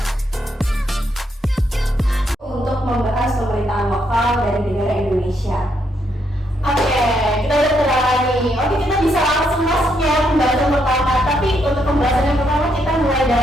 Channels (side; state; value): both; normal; correlation 0.76